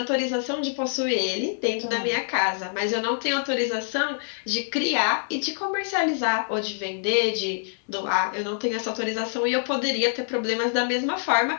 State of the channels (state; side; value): silent; right; 61 dB below the other